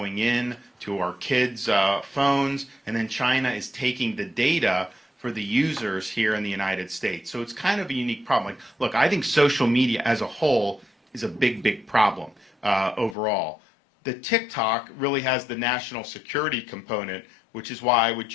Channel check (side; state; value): right; drops out; at 13.2 s